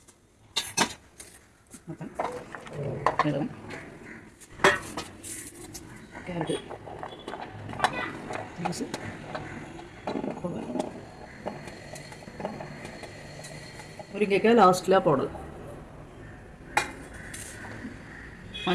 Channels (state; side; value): identical; both; correlation 1.00